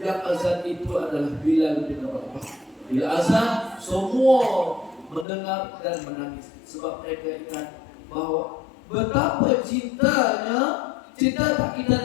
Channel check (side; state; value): right; drops out; at 5.2 s